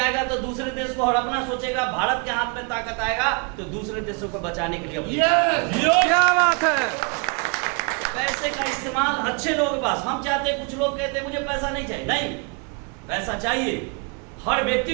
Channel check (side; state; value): left; quieter; 33.2 dB